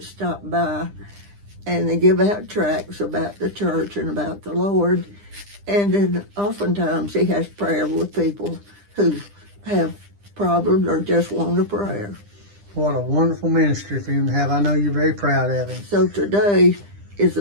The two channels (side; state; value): left; late; 9.9 ms